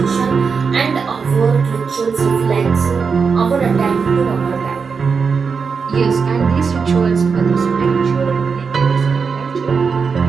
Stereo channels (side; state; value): left; quieter; 5.5 dB